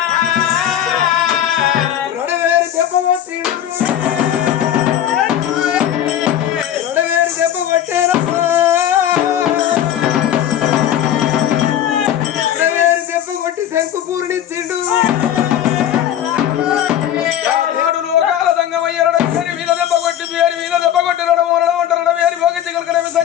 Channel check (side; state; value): right; quieter; 10.7 dB